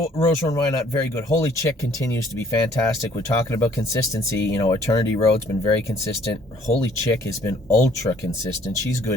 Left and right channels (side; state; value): both; normal; correlation 0.60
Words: Rose Run, why not? Very good. Holy Chick continues to be fantastic. We're talking about consistency. You know, Eternity Road's been very consistent. Holy Chick has been ultra consistent. She's